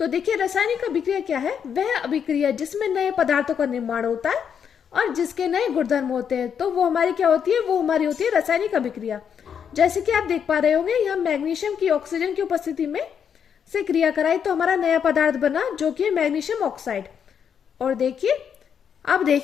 देखिए, रासायनिक अभिक्रिया क्या है? वह अभिक्रिया जिसमें नए पदार्थों का निर्माण होता है और जिसके नए गुणधर्म होते हैं, तो वो हमारी क्या होती है? वो हमारी होती है रासायनिक अभिक्रिया। जैसे कि आप देख पा रहे होंगे, यहाँ मैग्नीशियम की ऑक्सीजन की उपस्थिति में से क्रिया कराई तो हमारा नया पदार्थ बना जो कि है मैग्नीशियम ऑक्साइड। और देखिए, अब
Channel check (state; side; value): quieter; right; 7.7 dB